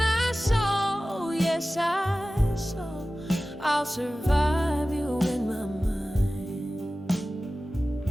I saw, yes I saw, I'll survive you in my mind.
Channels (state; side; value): normal; both; correlation 0.96